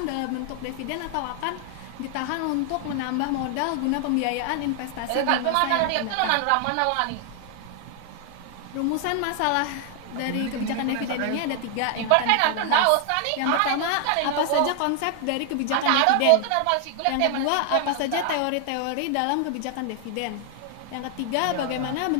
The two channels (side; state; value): both; different; correlation 0.00